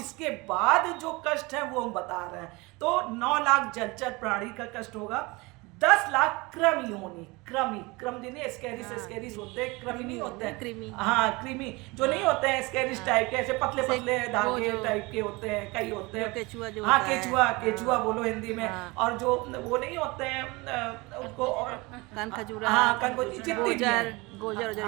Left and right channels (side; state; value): left; quieter; 24.5 dB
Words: बाद जो कष्ट है वो हम बता रहे हैं। तो 9 लाख जलचर प्राणी का कष्ट होगा। 10 लाख क्रम योनि, क्रम जिन्हें स्कैरिस होते हैं, कृमि नहीं होते हैं, कृमि जो नहीं होते हैं स्कैरिस टाइप के, ऐसे पतले पतले धागे टाइप के होते हैं, कई होते हैं, केचुआ बोलो हिंदी में। और जो वो नहीं होते हैं उनको,